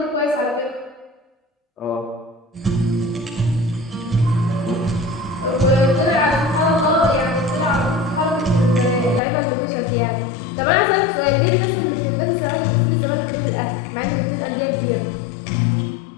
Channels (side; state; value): right; drops out; at 9.2 s